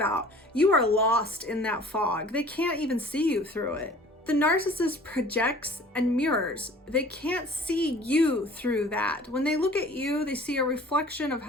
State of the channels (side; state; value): both; normal; correlation 0.48